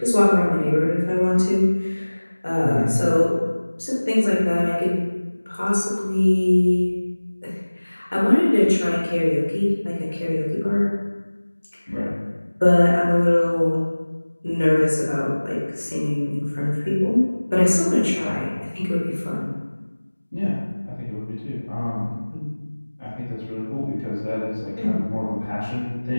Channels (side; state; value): both; inverted; correlation -1.00